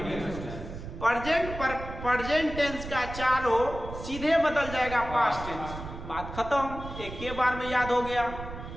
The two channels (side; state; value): right; noise; rumble, 10 dB below the sound